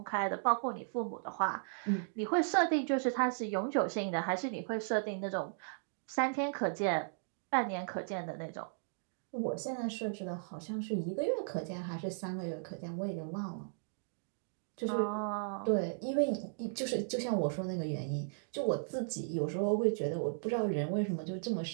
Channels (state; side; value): silent; left; digital silence